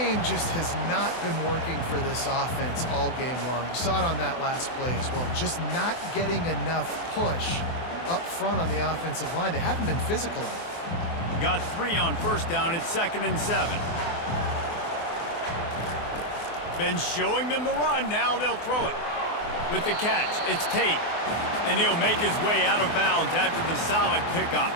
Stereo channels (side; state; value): right; late; 24 ms